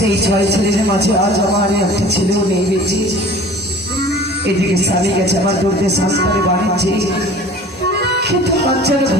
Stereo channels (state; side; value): normal; both; correlation 0.44